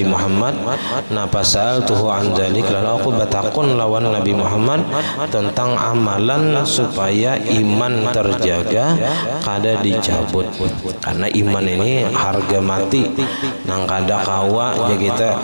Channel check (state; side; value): inverted; both; correlation -1.00